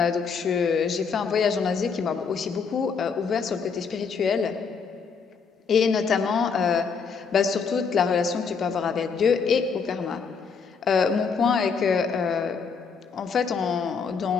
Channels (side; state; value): right; quieter; 5.7 dB